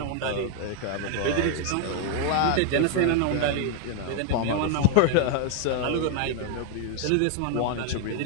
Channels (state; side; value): different; both; correlation 0.00